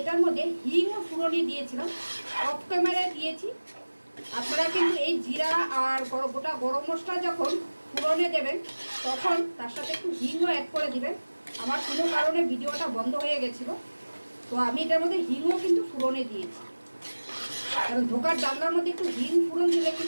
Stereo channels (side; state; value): both; inverted; correlation -1.00